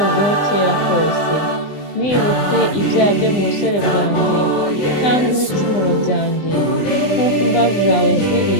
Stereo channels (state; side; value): late; right; 20 ms